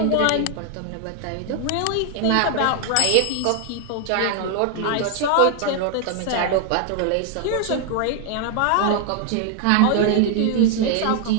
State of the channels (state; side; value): different; both; correlation 0.00